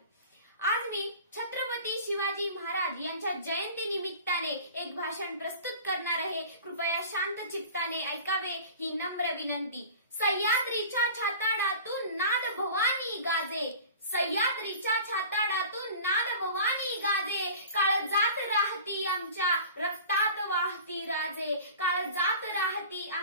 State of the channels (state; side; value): inverted; both; correlation -0.41